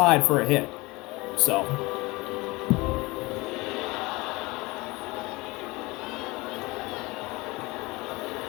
for a hit. So.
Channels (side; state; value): right; quieter; 23.0 dB